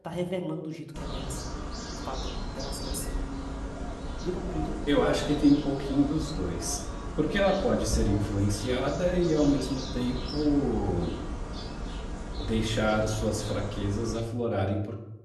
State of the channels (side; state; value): both; identical; correlation 1.00